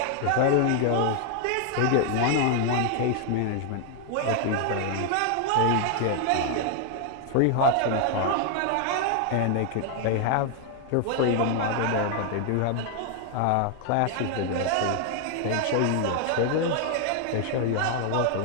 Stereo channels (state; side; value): different; both; correlation 0.00